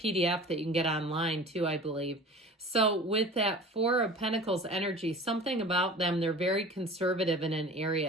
that you can get online too, I believe. So with that Four of Pentacles energy, something about them, they're very conservative in an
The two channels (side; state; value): both; normal; correlation 0.39